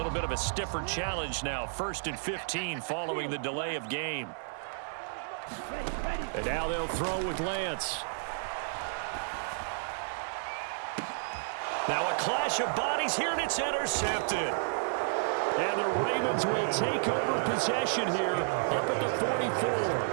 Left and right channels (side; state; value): left; silent; digital silence